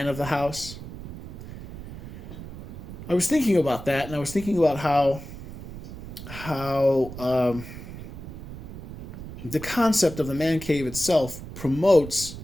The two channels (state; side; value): noise; right; rumble, 12 dB below the sound